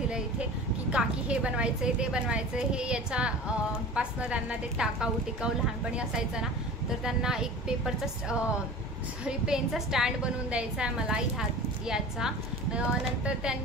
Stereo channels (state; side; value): normal; both; correlation 0.37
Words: इथे की काकी हे बनवायचं ते बनायचं। हे याच्या पासनं त्यांना ते टिकाऊ लहानपणी असायचं ना, तर त्यांना एक पेपरचा पेनचा स्टँड बनवून द्यायचा आहे मला याचा। नंतर